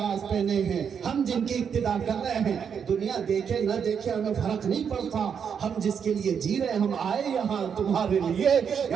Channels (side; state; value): left; quieter; 7.2 dB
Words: پہنے ہیں, ہم جن کی اقتدا کر رہے ہیں, دنیا دیکھے نہ دیکھے ہمیں فرق نہیں پڑتا. ہم جس کے لیے جی رہے, ہم آئے یہاں تمہارے لیے.